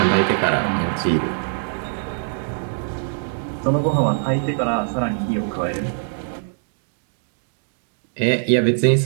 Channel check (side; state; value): left; silent; digital silence